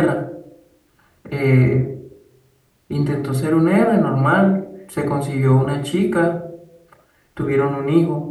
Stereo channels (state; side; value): identical; both; correlation 1.00